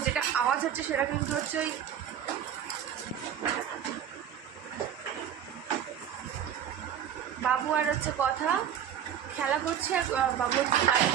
যেটা আওয়াজ হচ্ছে সেটা কিন্তু হচ্ছে ওই বাবু আর হচ্ছে কথা খেলা করছে। বাবু হচ্ছে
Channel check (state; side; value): quieter; left; 9.3 dB